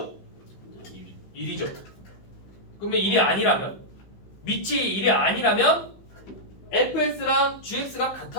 1이죠. 그러면 1이 아니라면, 밑이 1이 아니라면 fx랑 gx가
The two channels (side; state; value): right; late; 16 ms